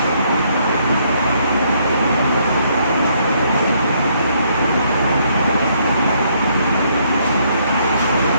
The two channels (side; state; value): both; inverted; correlation -0.70